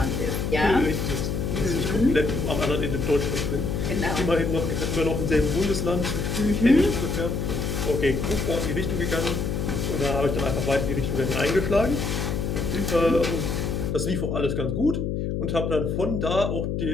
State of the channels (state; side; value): noise; left; hum, 1 dB below the sound